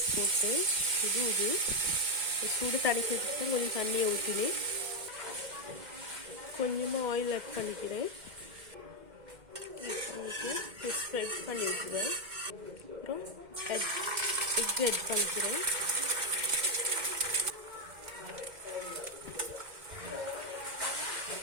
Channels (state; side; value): late; left; 2.1 ms